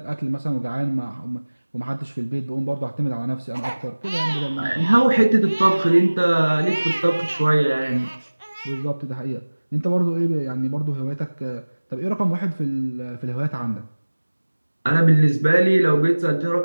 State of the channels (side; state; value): both; inverted; correlation -1.00